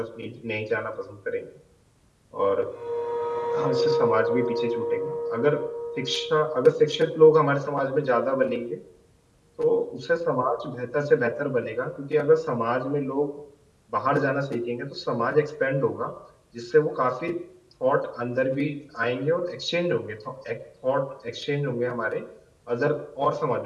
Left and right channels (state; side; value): identical; both; correlation 1.00